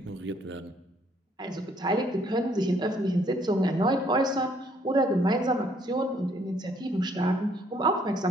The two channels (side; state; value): both; normal; correlation 0.65